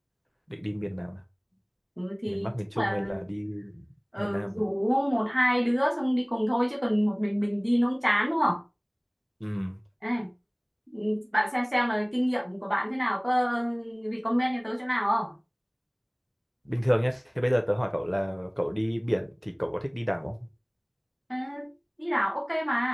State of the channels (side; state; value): both; identical; correlation 1.00